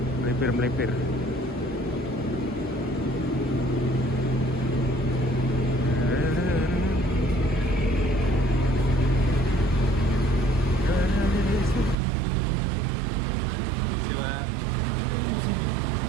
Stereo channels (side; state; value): left; drops out; at 12.0 s